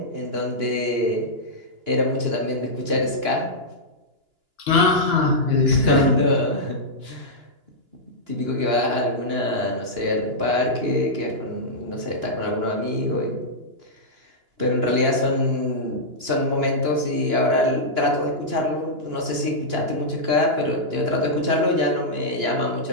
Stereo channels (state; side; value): late; left; 2.9 ms